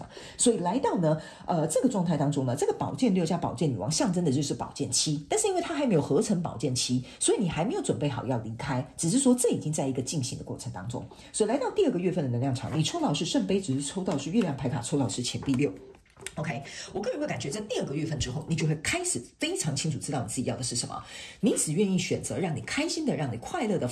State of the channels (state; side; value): identical; both; correlation 1.00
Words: 所以来到呢这个状态当中呢，这个宝剑六加宝剑女王象征的就是宝剑七，但是因为它还没有合成宝剑七，所以你还没有准备好要离开，只是说这已经在一个进行的过程当中。所以来到第2个月份的能量场，你抽到是圣杯，只是抽到是月亮牌卡，抽到是钱币六。OK， 我个人会感觉在第2个月份之后，你就会开始非常清楚知道你自己要的是什么，你只愿意选择让你开心的、让你快乐的、